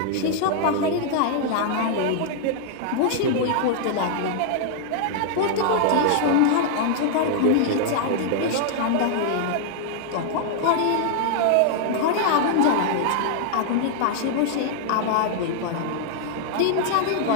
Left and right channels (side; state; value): both; different; correlation -0.01